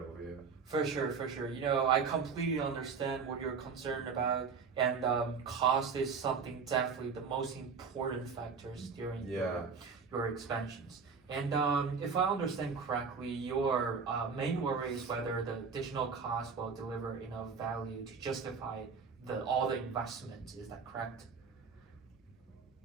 over here. For sure, for sure. I completely understand what you're concerned about, and cost is something definitely the most important factors during Yeah. your expansions. And if I understand correctly, your main worry is whether the additional cost will deliver enough value to justify all the investments. Is that correct?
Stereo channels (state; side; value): quieter; left; 5.4 dB